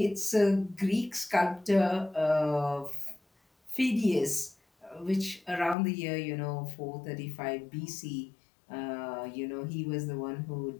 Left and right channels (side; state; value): right; drops out; at 5.8 s